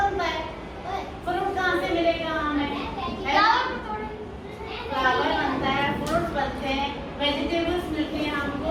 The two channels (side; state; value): both; identical; correlation 1.00